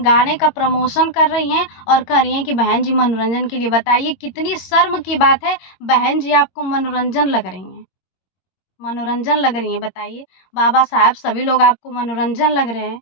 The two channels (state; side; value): late; right; 22 ms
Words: का प्रमोशन कर रही हैं और कह रही हैं कि बहन जी मनोरंजन के लिए। बताइए, कितनी शर्म की बात है, बहन जी आपको मनोरंजन लग रही हैं। मनोरंजन लग रही हैं, बताइए। बाबा साहब, सभी लोग आपको मनोरंजन लग रहे हैं,